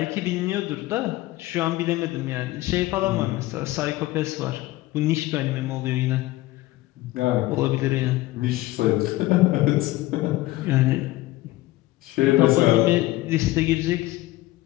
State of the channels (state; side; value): quieter; right; 18.0 dB